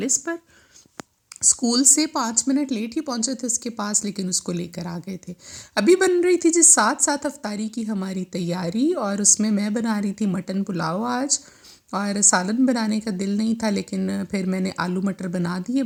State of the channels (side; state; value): both; identical; correlation 1.00